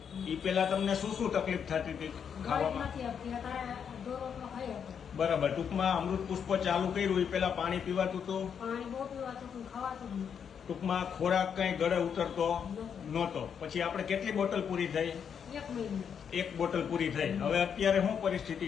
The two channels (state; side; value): quieter; right; 7.5 dB